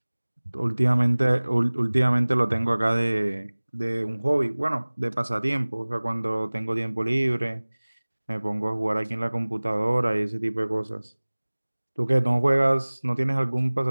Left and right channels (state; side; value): inverted; both; correlation -1.00